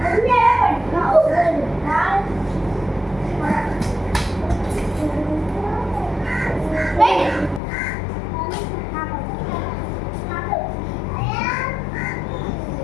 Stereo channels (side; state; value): right; drops out; at 7.6 s